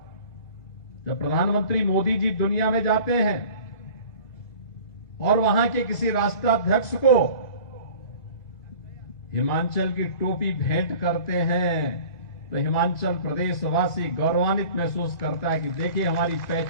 जब प्रधानमंत्री मोदी जी दुनिया में जाते हैं और वहां के किसी राष्ट्राध्यक्ष को हिमाचल की टोपी भेंट करते हैं, तो हिमाचल प्रदेश वासी गौरवान्वित महसूस करता है कि देखिए हमारी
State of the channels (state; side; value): late; right; 2.2 ms